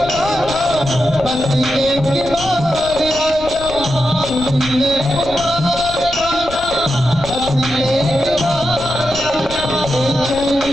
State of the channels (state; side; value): noise; left; rumble, 14 dB below the sound